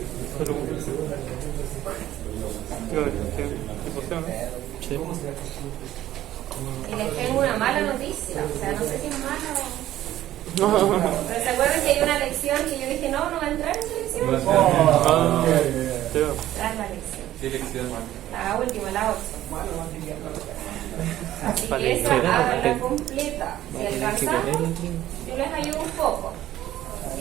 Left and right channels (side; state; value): left; quieter; 13.5 dB